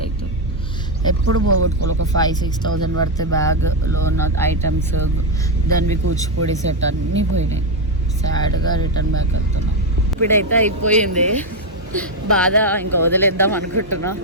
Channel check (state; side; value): normal; both; correlation 0.05